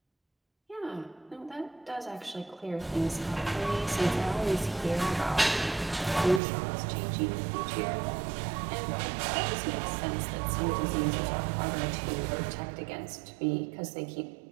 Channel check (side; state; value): left; drops out; at 6.4 s